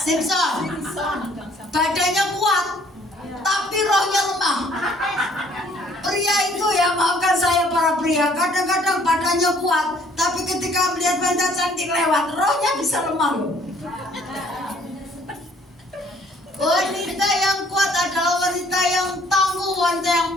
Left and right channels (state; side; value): normal; both; correlation 0.60